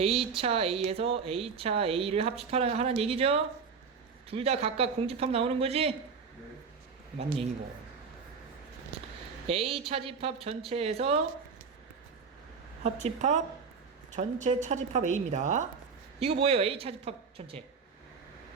A차 A에서 A차 A를 합집하라는 얘기죠? 둘 다 각각 공집합 나오는 거지? 네. 맞는 얘기고. A 차집합 전체에서 합집합 전체 차집합 A입니다. 이거 뭐예요? A 차집합 전체.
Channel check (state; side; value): quieter; left; 5.5 dB